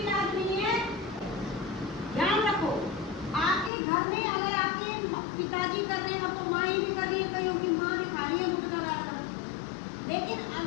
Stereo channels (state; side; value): drops out; right; at 3.7 s